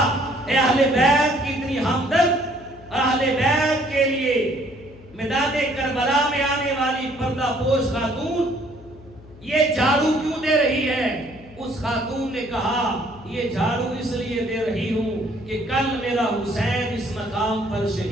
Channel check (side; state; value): left; noise; hum, 21 dB below the sound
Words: اے اہل بیت کی اتنی ہمدرد، اہل بیت کے لیے میدان کربلا میں آنے والی پردہ پوش خاتون یہ جھاڑو کیوں دے رہی ہے؟ اس خاتون نے کہا یہ جھاڑو اس لیے دے رہی ہوں کہ کل میرا حسین اس مقام پر